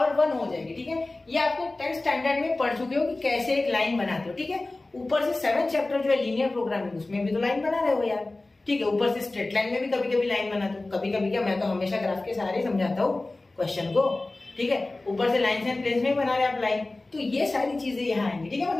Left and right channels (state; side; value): quieter; right; 3.0 dB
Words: 1 हो जाएगी, ठीक है, ये आपको 10th स्टैंडर्ड में पढ़ चुके हो कि कैसे एक लाइन बनाते हो, ठीक है, ऊपर से 7th चैप्टर जो है लीनियर प्रोग्रामिंग, उसमें भी तो लाइन बना रहे हो यार, ठीक है, ऊपर से स्ट्रेट लाइन में भी कभी कभी लाइन बनाते हो, कभी कभी क्या, मैं तो हमेशा ग्राफ के सहारे समझाता हूँ क्वेश्चन को, ठीक है, ऊपर से लाइन एंड प्लेस में बना रहे आप लाइन, तो ये सारी चीजें यहाँ आएंगी, ठीक है,